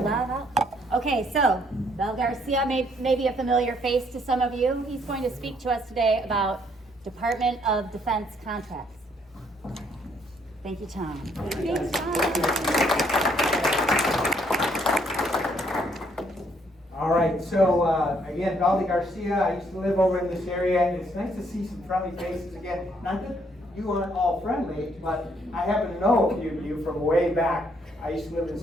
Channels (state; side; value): normal; both; correlation 0.68